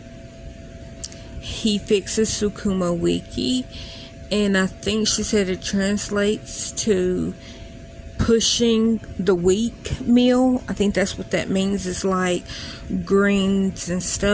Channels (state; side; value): identical; both; correlation 1.00